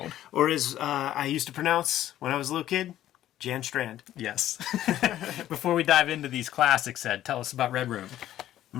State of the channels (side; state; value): right; quieter; 12.8 dB